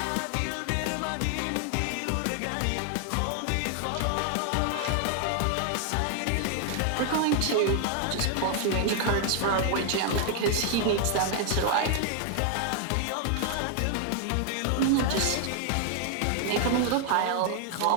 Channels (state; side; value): different; both; correlation 0.00